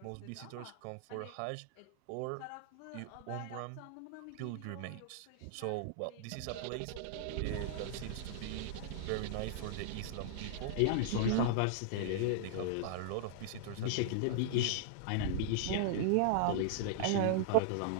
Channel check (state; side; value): different; both; correlation -0.01